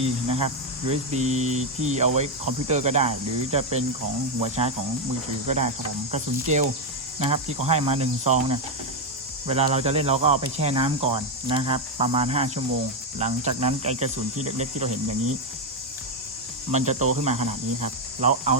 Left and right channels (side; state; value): both; normal; correlation 0.05